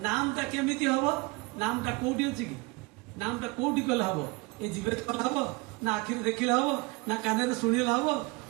নামটা কেমিতি হব? নামটা কোটি ଅଛି କି? নামটা কোটি কলে হব? এই জিভরে কলে হব, না আখিরে দেখিলে হব, না কাନରେ শুনিলে হব,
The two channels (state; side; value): quieter; left; 25.9 dB